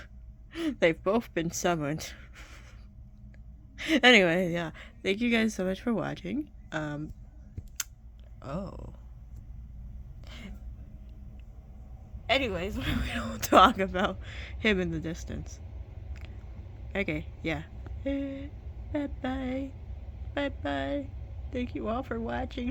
They've both been summoned. Anyway, yeah, thank you guys so much for watching. Anyways, we don't talk about him in the distance. Okay, yeah. Bye-bye. Bye-bye. Thank you all for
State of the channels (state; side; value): identical; both; correlation 1.00